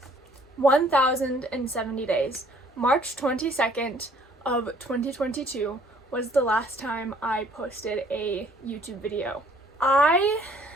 1,070 days. March 22nd of 2022 was the last time I posted a YouTube video. I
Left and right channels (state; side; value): normal; both; correlation 0.59